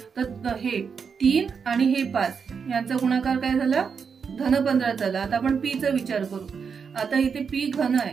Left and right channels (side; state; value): left; quieter; 6.1 dB